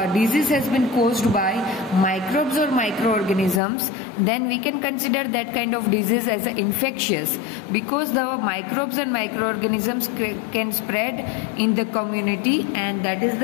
disease has been caused by microbes or microorganisms, then we can consider that kind of disease as infectious, because the microbes and microorganisms can spread in the community, and that is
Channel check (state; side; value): drops out; right; at 3.6 s